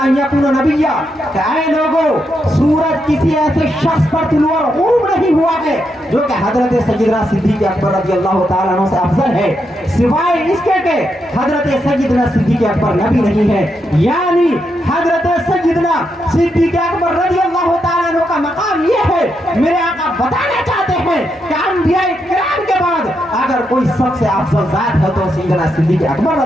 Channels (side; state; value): both; normal; correlation 0.82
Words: यकून नबिय्या। कि ऐ लोगों, सूरज किसी ऐसे शख्स पर तुलू और ग़ुरूब नहीं हुआ है जो कि हजरत सैयदना सिद्दीक़ अकबर रज़ियल्लाहु ताला अन्हु से अफजल है, सिवाय इसके के हजरत सैयदना सिद्दीक़ अकबर नबी नहीं है। यानी हजरत सैयदना सिद्दीक़ अकबर रज़ियल्लाहु ताला अन्हु का मकाम ये है, मेरे आका बताना चाहते हैं कि अंबिया किराम के बाद अगर कोई सबसे अफजल जात है तो सैयदना सिद्दीक़ अकबर